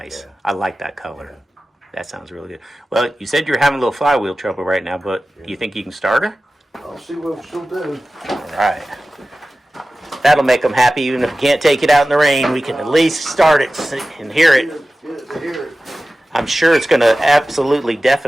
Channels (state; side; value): normal; both; correlation 0.96